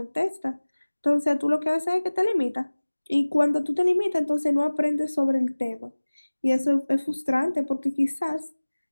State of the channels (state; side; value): inverted; both; correlation -1.00